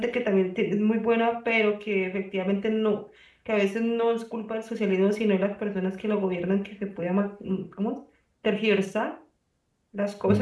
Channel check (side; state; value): both; identical; correlation 1.00